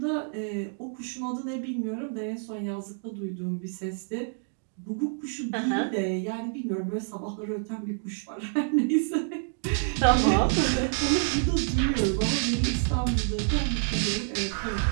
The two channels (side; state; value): left; silent; 59 dB below the other